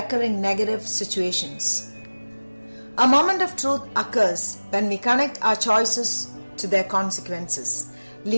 negative situations. A moment of truth occurs when we connect our choices to their consequences,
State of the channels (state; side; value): inverted; both; correlation -1.00